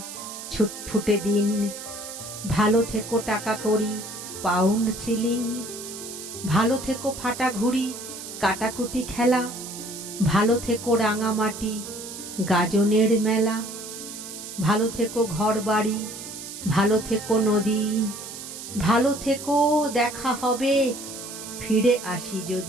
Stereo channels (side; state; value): right; noise; hiss, 11 dB below the sound